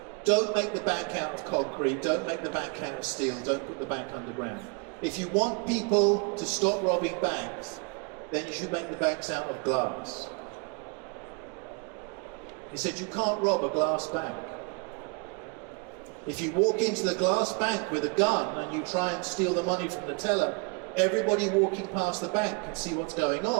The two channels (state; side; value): quieter; left; 33.2 dB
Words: don't make the bank out of concrete, don't make the bank out of steel, don't put the bank underground. If you want people to stop robbing banks, then you should make the banks out of glass. He said, you can't rob a glass bank. If you walk into the glass bank with a gun and you try and steal the money from the teller, everybody walking past the bank can see what's going